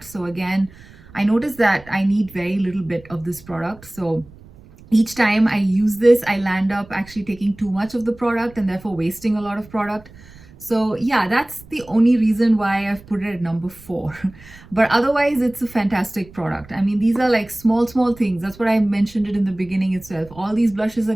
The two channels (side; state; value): right; noise; rumble, 22 dB below the sound